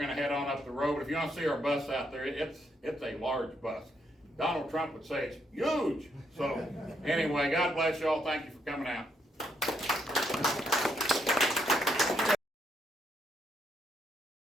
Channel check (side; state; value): both; normal; correlation 0.76